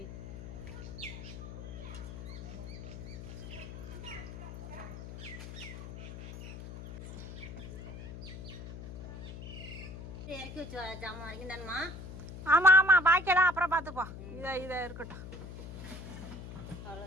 இறக்கி வச்சு ஜாமான் வரைக்கும் தானம்மா? ஆமாம் ஆமாம், பாக்கியெல்லாம் அப்புறம் பார்த்துப்போம். இதை இருக்கட்டும்,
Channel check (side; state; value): left; noise; hum, 10 dB below the sound